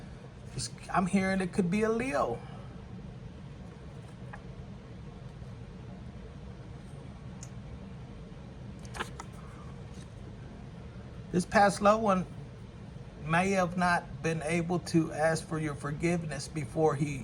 I'm hearing it could be a Leo. This past loved one may have not been able to ask for your forgiveness before he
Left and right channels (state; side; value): identical; both; correlation 1.00